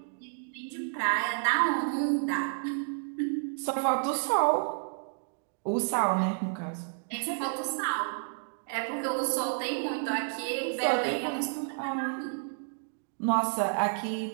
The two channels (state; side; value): silent; left; digital silence